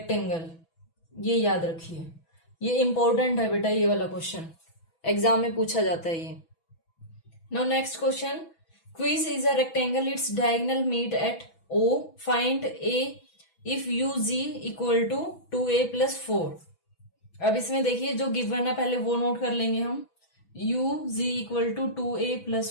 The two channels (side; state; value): right; late; 6.1 ms